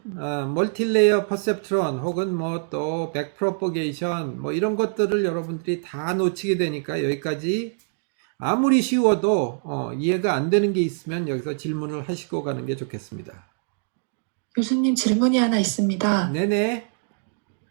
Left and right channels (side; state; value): left; silent; digital silence